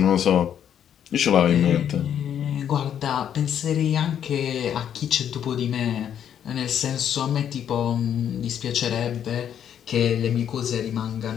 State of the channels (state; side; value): quieter; right; 9.3 dB